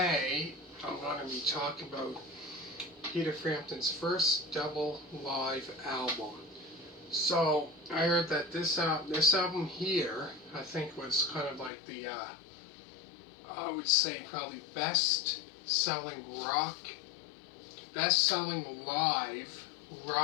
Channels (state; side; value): drops out; right; at 11.7 s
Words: I'm going to be talking about Peter Frampton's first double live album. So I heard that this album here, I think, was kind of like the, I would say probably best-selling live